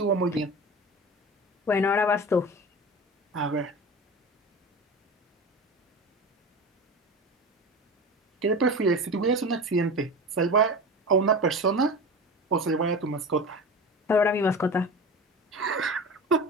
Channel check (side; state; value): both; normal; correlation 0.30